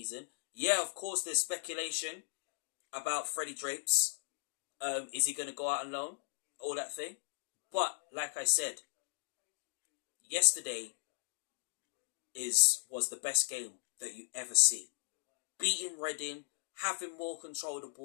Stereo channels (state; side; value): silent; right; digital silence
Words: Yeah, of course, there's speculation about Freddie Drapes. Is he going to go out on loan? All that thing. But, like I said, yesterday was the best game that you ever see. Beating Reading, having more control of the